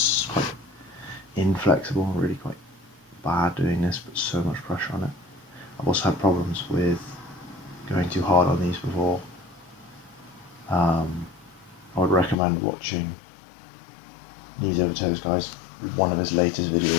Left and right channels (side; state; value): right; drops out; at 12.4 s